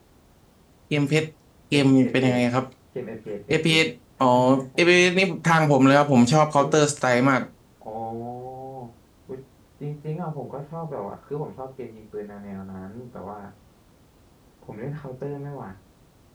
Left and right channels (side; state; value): both; identical; correlation 1.00